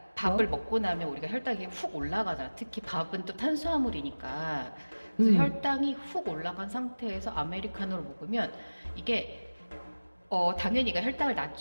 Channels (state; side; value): inverted; both; correlation -1.00